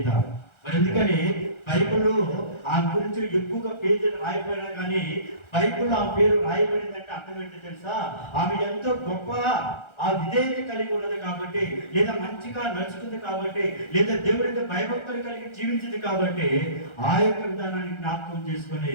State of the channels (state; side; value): late; right; 1.3 ms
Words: మరి ఎందుకని బైబిల్లో ఆమె గురించి ఎక్కువగా పేజీలు రాయబడినా కానీ బైబిల్లో ఆ పేరు రాయబడిందంటే అర్థం ఏంటో తెలుసా? ఆమె ఎంతో గొప్ప ఆ విధేయత కలిగి ఉన్నది కాబట్టి, లేదా మంచిగా నడుచుకుంది కాబట్టి, లేదా దేవుడికి భయభక్తులు కలిగి జీవించింది కాబట్టి ఆ యొక్క విధానాన్ని జ్ఞాపకం